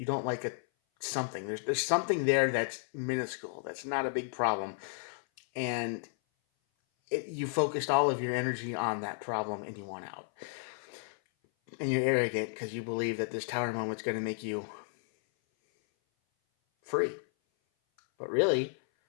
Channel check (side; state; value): right; silent; 56 dB below the other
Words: like something. There's something there that's minuscule, that's not a big problem, and you focused all of your energy on that problem and you want out. And you're arrogant because you believe that this Tower moment's going to make you free. But really,